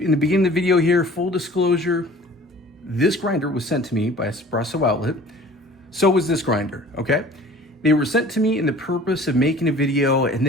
the beginning of the video here, full disclosure, this grinder was sent to me by Espresso Outlet. So was this grinder, okay? They were sent to me in the purpose of making a video and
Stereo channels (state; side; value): normal; both; correlation 0.47